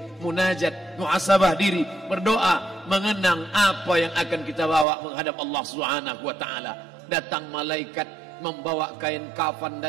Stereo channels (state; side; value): drops out; left; at 4.9 s